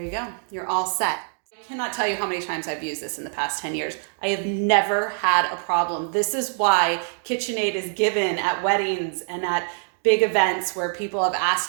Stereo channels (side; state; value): left; silent; 62 dB below the other